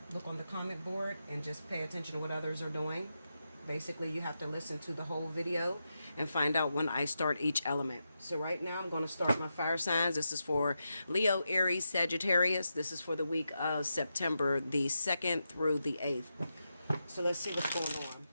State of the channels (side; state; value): both; inverted; correlation -0.87